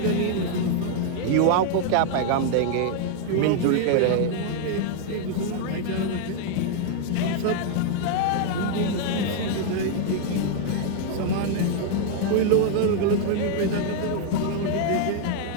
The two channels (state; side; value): different; both; correlation 0.00